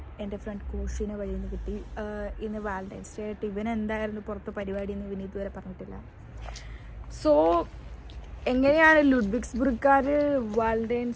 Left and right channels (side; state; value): both; identical; correlation 1.00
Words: എൻ്റെ front കോഷിനെ വഴിയിൽ നിന്ന് കിട്ടി. ഇന്ന് വാലന്റൈൻസ് ഡേ ആയിട്ട് ഇവൻ എന്തായിരുന്നു പുറത്ത് പരിപാടി എന്ന് ഇവന് ഇതുവരെ പറഞ്ഞിട്ടില്ല. സോ എങ്ങനെയാണ് ലുഡ്വിഗ്സ്ബർഗുകാർ